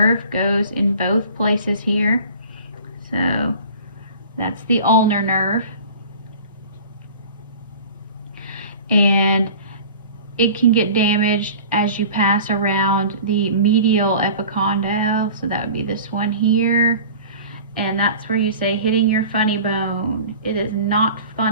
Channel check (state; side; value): inverted; both; correlation -0.42